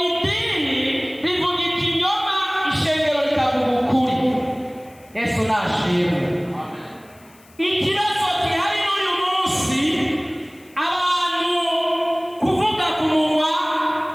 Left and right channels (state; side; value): noise; left; hiss, 28 dB below the sound